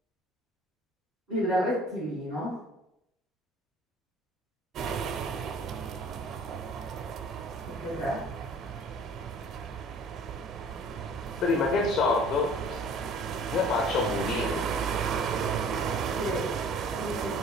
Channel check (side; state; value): both; normal; correlation 0.49